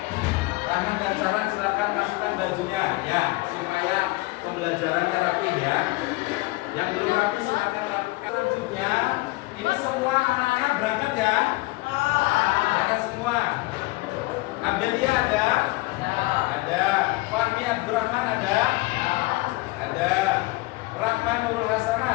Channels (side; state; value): right; quieter; 22.0 dB